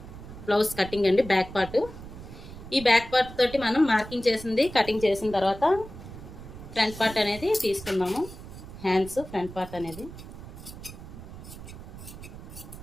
బ్లౌజ్ కటింగ్ అండి, బ్యాక్ పార్ట్. ఈ బ్యాక్ పార్ట్ తోటి మనం మార్కింగ్ చేసింది కటింగ్ చేసిన తర్వాత ఫ్రంట్ పార్ట్ అనేది తీసుకుందాము. హ్యాండ్స్ ఫ్రంట్ పార్ట్ అనేది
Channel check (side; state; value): right; noise; rumble, 14 dB below the sound